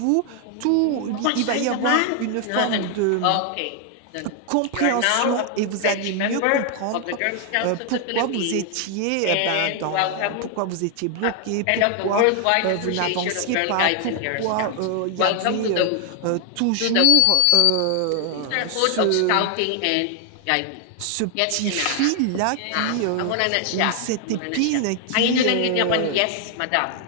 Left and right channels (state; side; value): different; both; correlation 0.00